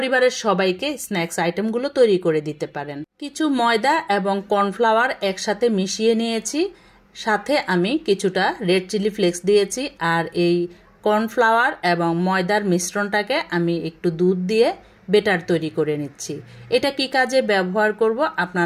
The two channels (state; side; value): identical; both; correlation 1.00